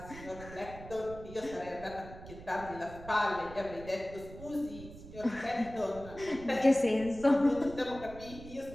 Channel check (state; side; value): noise; right; rumble, 14 dB below the sound